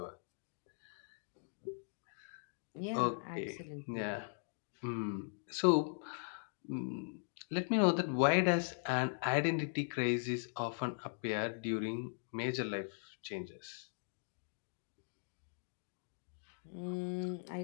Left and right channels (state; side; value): silent; right; digital silence